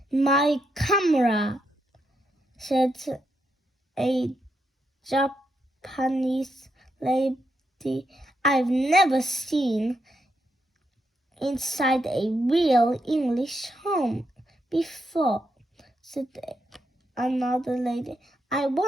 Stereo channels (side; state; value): both; normal; correlation 0.81